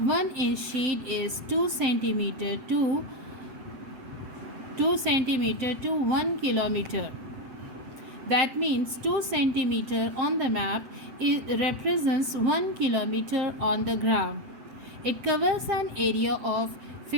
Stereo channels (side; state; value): left; late; 7.9 ms